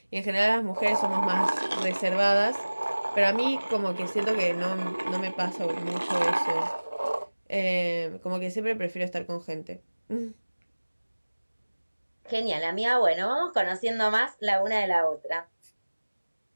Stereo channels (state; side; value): inverted; both; correlation -1.00